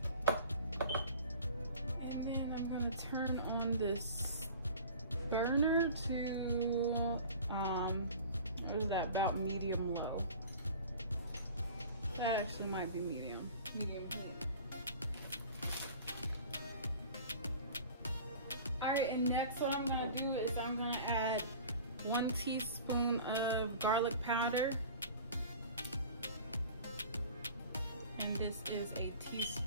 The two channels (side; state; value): both; inverted; correlation -0.42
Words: And then I'm going to turn on this burner to, what is that, about medium low. That actually might be medium heat. Alright, and next what I'm going to do is I'm going to add 1 teaspoon of garlic powder. And this is a